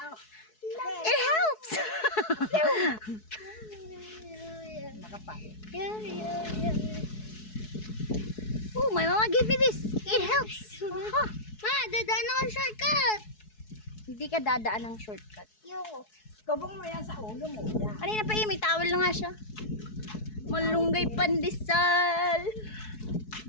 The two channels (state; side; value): late; right; 4.7 ms